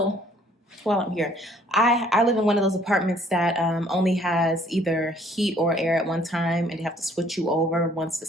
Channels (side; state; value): both; normal; correlation 0.60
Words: while I'm here, I live in one of those apartments that only has either heat or air at one time, and they have to switch you over once the